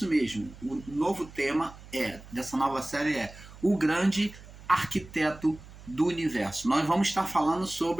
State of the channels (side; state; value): right; noise; hum, 18 dB below the sound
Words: mesmo. O novo tema dessa nova série é o grande arquiteto do universo. Nós vamos estar falando